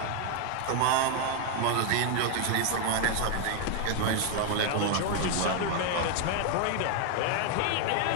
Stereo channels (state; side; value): different; both; correlation 0.01